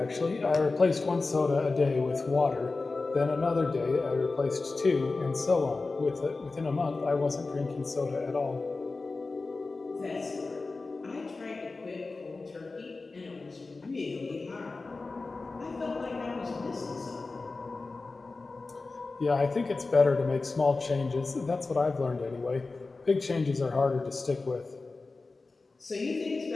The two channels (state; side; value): quieter; right; 3.7 dB